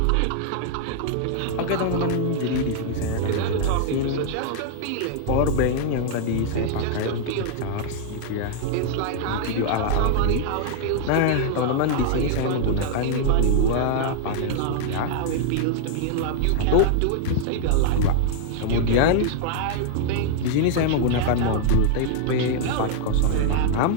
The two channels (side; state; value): both; different; correlation -0.01